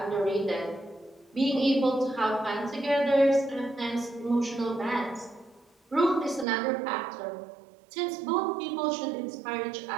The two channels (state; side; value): drops out; left; at 6.5 s